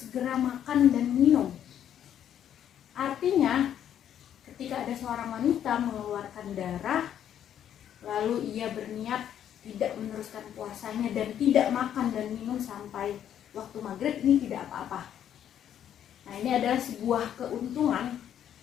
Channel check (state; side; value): quieter; right; 10.0 dB